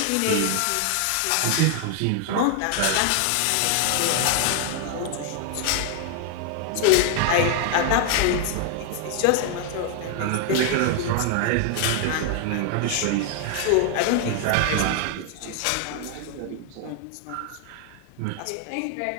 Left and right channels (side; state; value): both; different; correlation 0.00